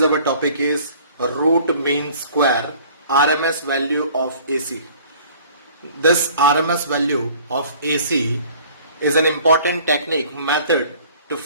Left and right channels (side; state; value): both; inverted; correlation -0.51